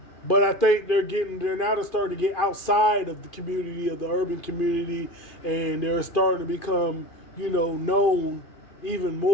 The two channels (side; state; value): right; late; 2.5 ms